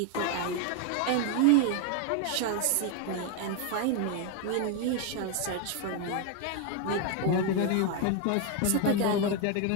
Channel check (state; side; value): different; both; correlation 0.01